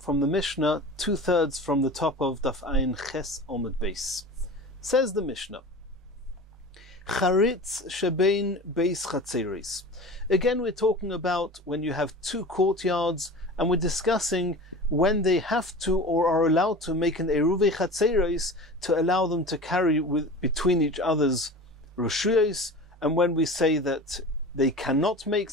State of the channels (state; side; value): normal; both; correlation 0.35